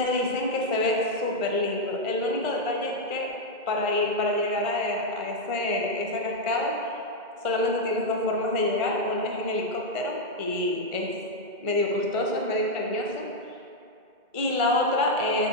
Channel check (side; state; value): left; late; 2.1 ms